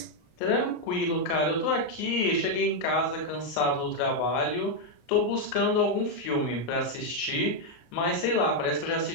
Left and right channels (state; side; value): late; right; 34 ms